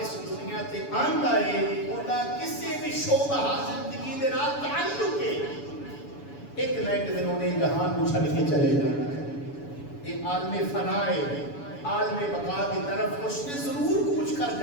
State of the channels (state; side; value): late; right; 7.0 ms